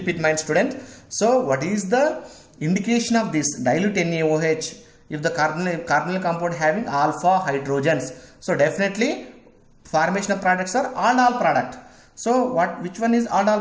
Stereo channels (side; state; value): both; identical; correlation 1.00